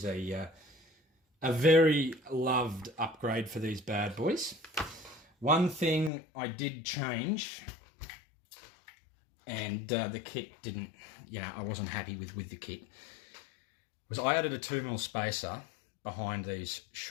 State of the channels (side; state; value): right; drops out; at 6.1 s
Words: a very loved upgrade for these bad boys. One thing I did change, and the kit didn't, I wasn't happy with the kit, was I added a 2mm spacer behind these